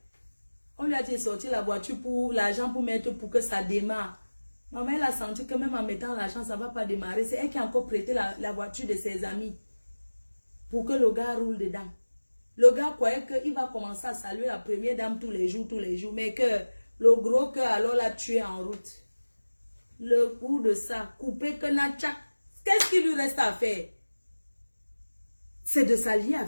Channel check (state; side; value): inverted; both; correlation -1.00